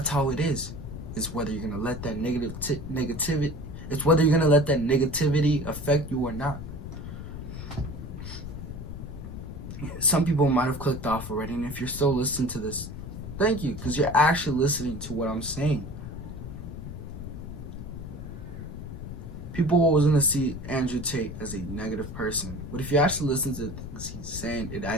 how it is. It's whether you're going to let that negativity It's whether you're gonna let that negativity affect you or not. Some people might have clicked off already, and if you're still listening to this, thank you, because you're actually listening to what I'm saying. People are always gonna see Andrew Tate as a negative person, but if you actually listen to things he's saying, it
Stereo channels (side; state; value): left; noise; rumble, 9 dB below the sound